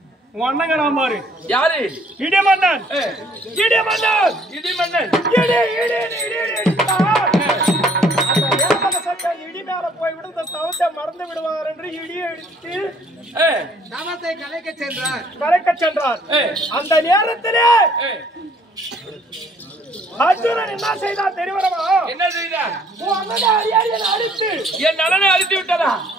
அண்ணன் பாரு யாரு இடிமன்னன் இடி மேல போய் விடுந்த தவத்தை மறந்து விடுவார் என்று இடியை எடுத்து தவத்தை கலைக்க சென்றார் அந்த நேரத்திலே அர்ஜுனன் என்ன செய்தான் தெரியுமா? என்ன செய்தான்? உன் அண்ணனை அடியாரியனை அடித்து என் நலனை அடித்து விட்டதா?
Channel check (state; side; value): normal; both; correlation 0.61